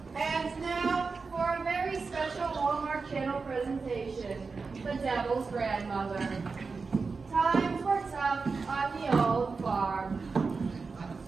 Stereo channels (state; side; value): quieter; left; 4.5 dB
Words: And now for a very special Hallmark Channel presentation, The Devil's Grandmother. Times were tough on the old farm.